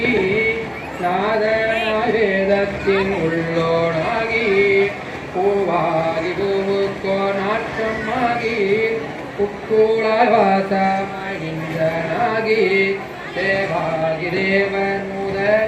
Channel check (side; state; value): both; identical; correlation 1.00